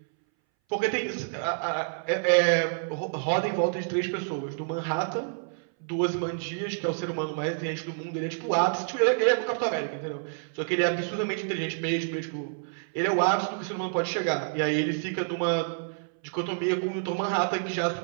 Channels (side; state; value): left; silent; 59 dB below the other